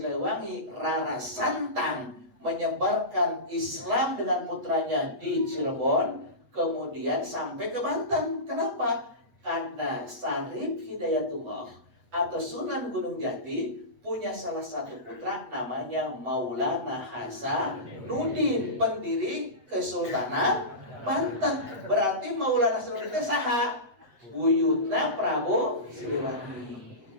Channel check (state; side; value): late; left; 8.1 ms